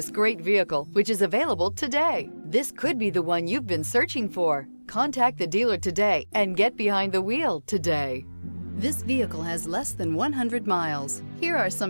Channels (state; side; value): inverted; both; correlation -1.00